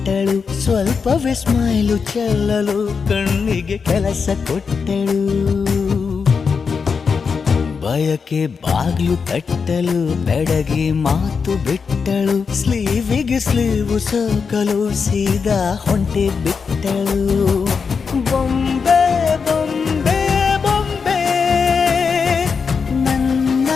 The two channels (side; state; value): right; quieter; 5.6 dB